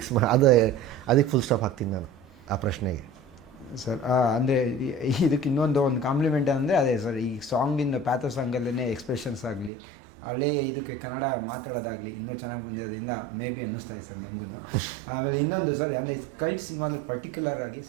ಅದಕ್ಕೆ ಫುಲ್ ಸ್ಟಾಪ್ ಹಾಕ್ತೀನಿ ನಾನು ಆ ಪ್ರಶ್ನೆಗೆ. ಸರ್, ಅಂದರೆ ಇದಕ್ಕೆ ಇನ್ನೊಂದು ಕಾಂಪ್ಲಿಮೆಂಟ್ ಅಂದರೆ ಅದೇ ಸರ್, ಈ ಸಾಂಗಿಂದ ಪ್ಯಾಥೋ ಸಾಂಗಲ್ಲೇ ಎಕ್ಸ್ಪ್ರೆಷನ್ಸ್ ಆಗಲಿ, ಹಳೇ ಇದಕ್ಕೆ ಕನ್ನಡ ಮಾತಾಡೋದಾಗಲಿ ಇನ್ನೂ ಚೆನ್ನಾಗಿ ಬಂದಿರೋದ್ರಿಂದ ಮೇ ಬಿ ಅನ್ನಿಸ್ತಾ ಇದೆ ಸರ್ ನಮಗೂ. ಆಮೇಲೆ ಇನ್ನೊಂದು ಸರ್, ಅಂದರೆ ಕಲ್ಟ್ ಸಿನಿಮಾದಲ್ಲಿ ಪರ್ಟಿಕ್ಯುಲರ್ ಆಗಿ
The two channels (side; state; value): left; drops out; at 9.7 s